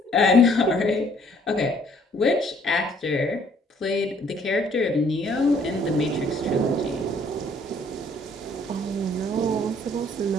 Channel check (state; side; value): normal; both; correlation 0.61